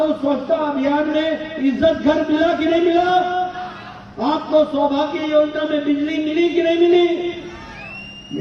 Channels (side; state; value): both; identical; correlation 1.00